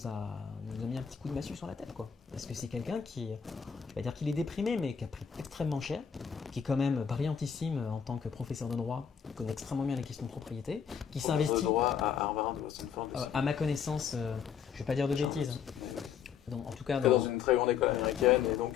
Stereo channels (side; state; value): right; quieter; 7.5 dB